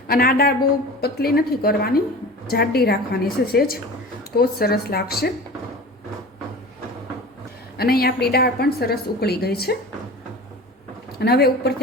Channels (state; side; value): normal; both; correlation 0.36